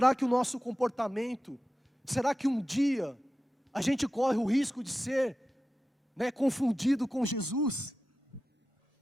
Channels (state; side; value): normal; both; correlation 0.93